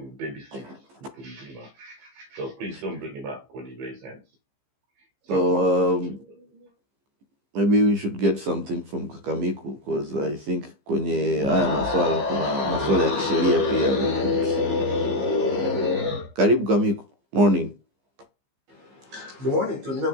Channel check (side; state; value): left; late; 15 ms